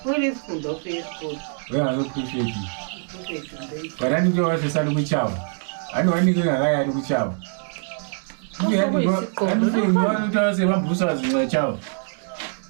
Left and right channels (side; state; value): left; silent; 63 dB below the other